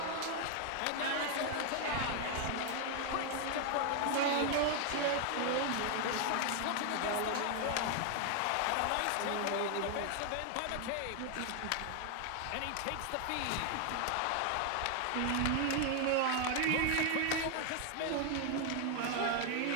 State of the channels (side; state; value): both; different; correlation 0.00